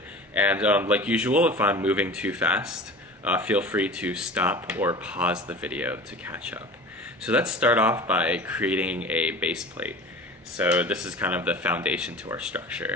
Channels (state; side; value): normal; both; correlation 0.38